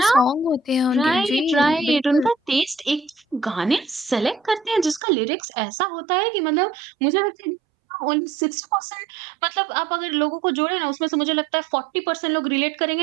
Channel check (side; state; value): left; drops out; at 5.0 s